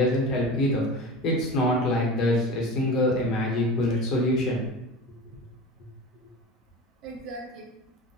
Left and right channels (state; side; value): normal; both; correlation 0.32